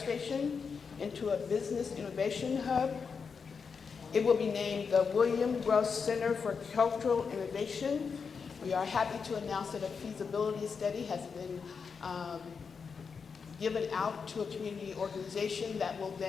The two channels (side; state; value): right; quieter; 5.7 dB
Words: into a business innovation hub. It will be named the William Gross Center for Cultural Innovation. We are happy to announce that a feasibility study has been given out to a community organization that will